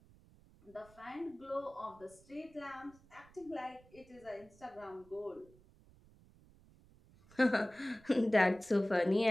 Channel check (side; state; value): right; noise; rumble, 26 dB below the sound